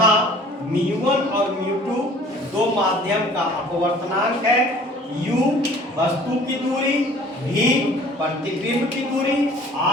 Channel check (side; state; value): both; normal; correlation 0.50